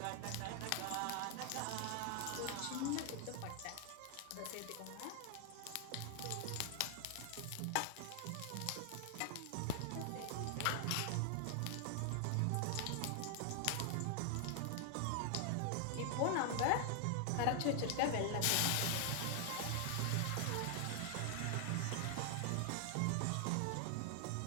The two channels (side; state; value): both; different; correlation 0.00